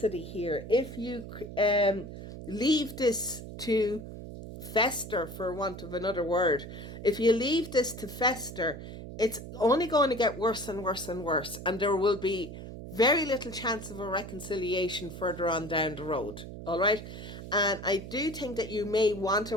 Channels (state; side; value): noise; right; hum, 11 dB below the sound